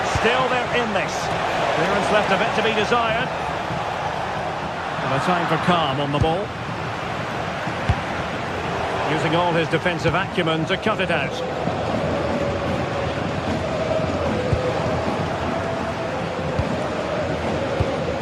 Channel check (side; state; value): both; identical; correlation 1.00